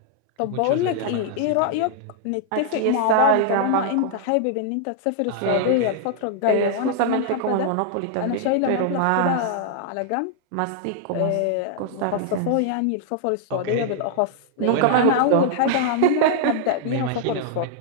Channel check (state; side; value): different; both; correlation -0.01